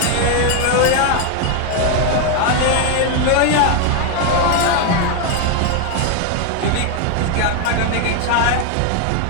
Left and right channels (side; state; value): both; different; correlation 0.01